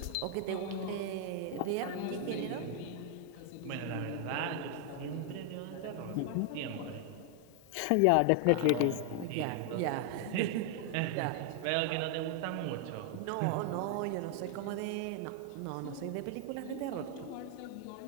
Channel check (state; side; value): different; both; correlation 0.00